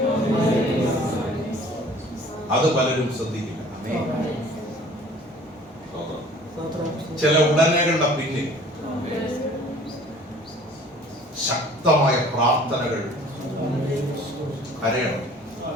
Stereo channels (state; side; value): normal; both; correlation 0.50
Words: അത് പലരും ശ്രദ്ധിക്കില്ല. ചില ഉടനെകളുടെ പിന്നിൽ ശക്തമായ പ്രാർത്ഥനകൾ. കരയണം.